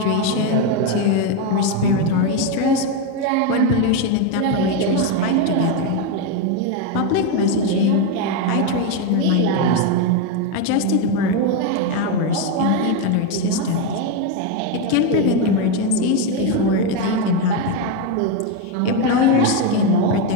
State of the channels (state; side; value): different; both; correlation 0.03